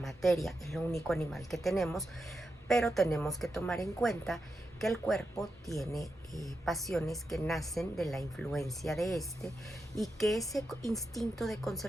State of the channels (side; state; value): both; normal; correlation 0.87